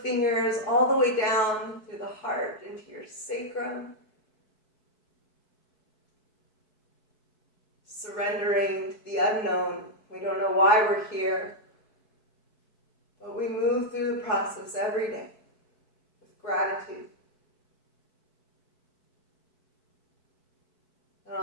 all the way down through the heart, into your sacrum. Surrendering to the unknown. We don't know why we're here. But we move through the process every day with gratitude. And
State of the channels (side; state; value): right; late; 4.6 ms